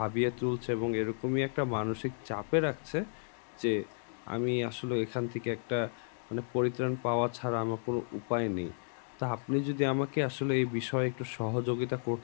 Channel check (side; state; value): right; silent; digital silence